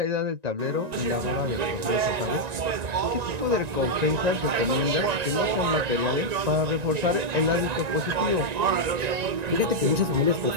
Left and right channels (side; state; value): left; late; 1.9 ms